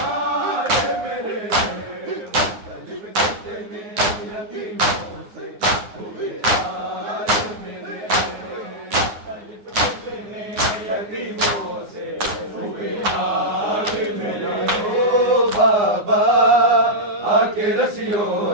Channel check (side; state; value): left; late; 9.7 ms